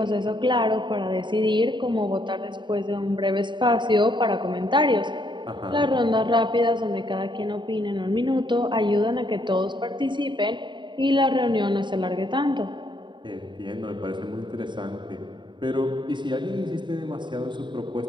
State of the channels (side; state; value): left; late; 0.23 ms